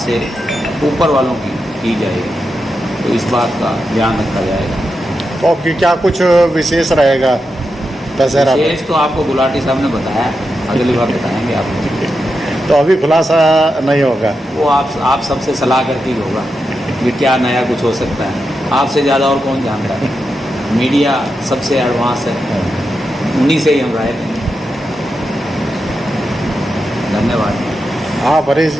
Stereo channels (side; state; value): both; normal; correlation 0.87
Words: ऊपर वालों की जाएगी, तो इस बात का ध्यान रखा जाएगा। तो आपकी क्या कुछ विशेष रहेगा दशहरा? विशेष तो आपको गुलाटी साहब ने बताया, अगली बार बताएंगे आपको। तो अभी खुलासा नहीं होगा? वो आप सबसे सलाह करके ही होगा कि क्या नया कुछ हो सकता है। आपसे ज़्यादा और कौन जानता है? मीडिया सबसे एडवांस है, उन्हीं से ही हम राय लेंगे। धन्यवाद। हाँ परेश